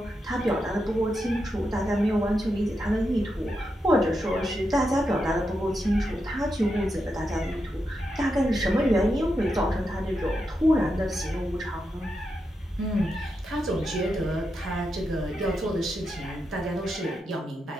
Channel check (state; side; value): normal; both; correlation 0.86